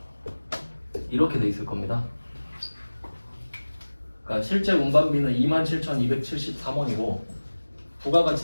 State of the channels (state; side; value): inverted; both; correlation -1.00